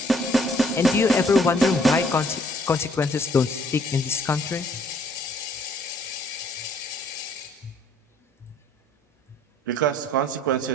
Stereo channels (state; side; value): normal; both; correlation 0.61